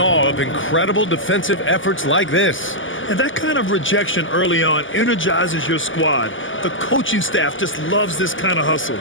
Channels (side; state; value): right; late; 0.57 ms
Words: of incredible defensive efforts like this. And that kind of rejection early on energizes your squad. The coaching staff just loves this kind of hustle.